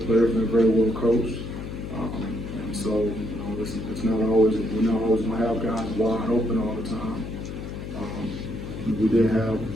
players and they're very well coached. And so, it's not always, we're not always going to have guys wide open all the time. We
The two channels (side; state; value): left; noise; hum, 8 dB below the sound